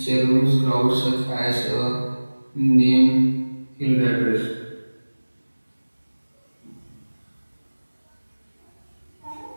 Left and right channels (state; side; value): inverted; both; correlation -1.00